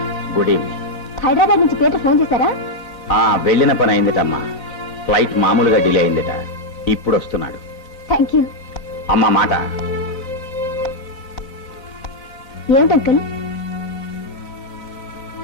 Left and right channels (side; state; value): right; late; 3.8 ms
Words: Good evening. Hyderabad నుంచి Peter phone చేశారా? వెళ్ళిన పని అయిందిటమ్మా. ఫ్లైట్ మామూలుగా డిలే అయిందిట. ఇప్పుడు వస్తున్నాడు. Thank you. అమ్మా మాట. ఏమిటి అంకుల్?